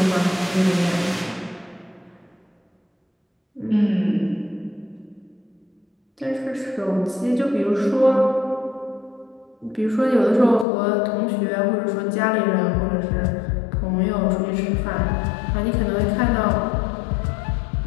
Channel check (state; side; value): drops out; right; at 10.7 s